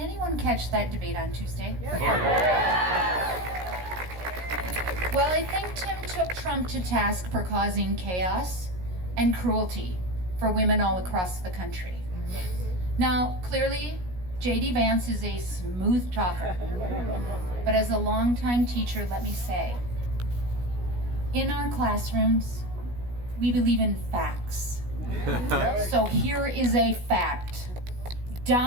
catch that debate on Tuesday? Well, I think Tim took Trump to task for causing chaos and cruelty for women all across the country. Now, clearly, J.D. Vance is a smooth talker. But as a longtime teacher, let me say, in our classrooms, we believe in facts. So here is a fact.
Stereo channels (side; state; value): left; late; 16 ms